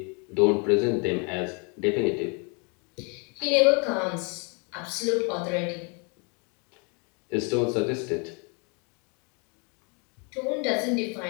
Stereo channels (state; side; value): quieter; right; 34.3 dB